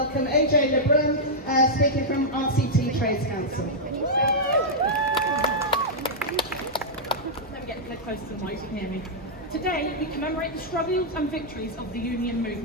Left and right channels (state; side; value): normal; both; correlation -0.07